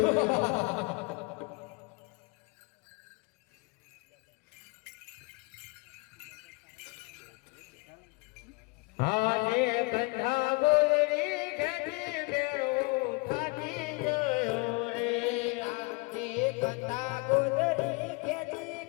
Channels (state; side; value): quieter; right; 28.3 dB